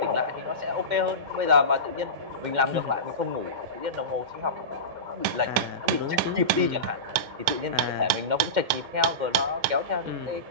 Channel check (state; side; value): late; left; 2.4 ms